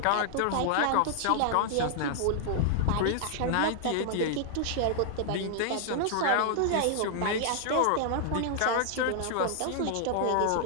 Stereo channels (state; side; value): different; both; correlation -0.01